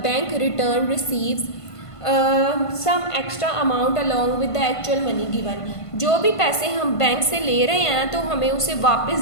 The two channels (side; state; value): right; late; 1.5 ms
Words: bank return receives some extra amount along with the actual money given. जो भी पैसे हम बैंक से ले रहे हैं तो हमें उसे वापस